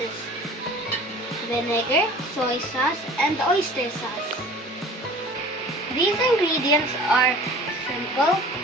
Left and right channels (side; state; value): both; normal; correlation 0.45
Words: Vinegar, soy sauce, and oyster sauce. These ingredients are simple,